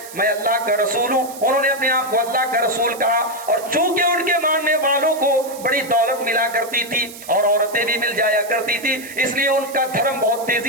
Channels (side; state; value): right; noise; hiss, 15 dB below the sound